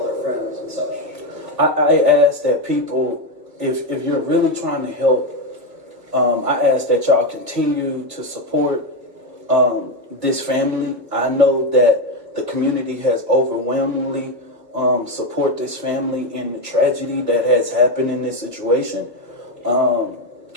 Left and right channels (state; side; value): late; left; 1.7 ms